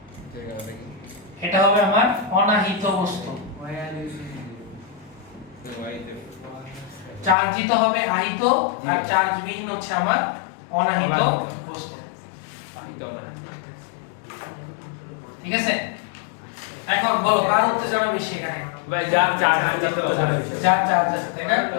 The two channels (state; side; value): drops out; right; at 7.4 s